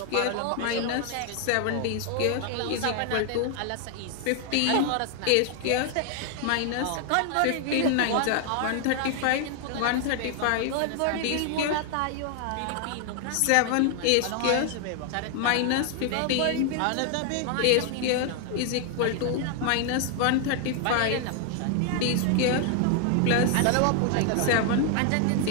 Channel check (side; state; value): both; different; correlation 0.00